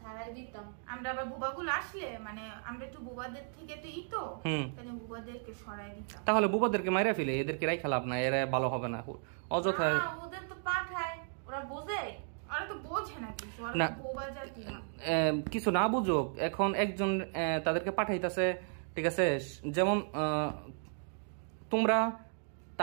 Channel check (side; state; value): left; silent; 55 dB below the other